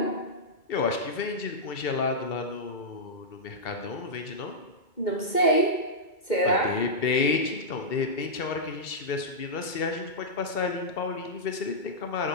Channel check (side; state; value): right; late; 2.2 ms